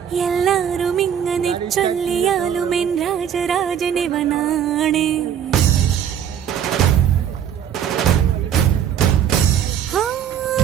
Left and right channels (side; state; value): left; quieter; 9.0 dB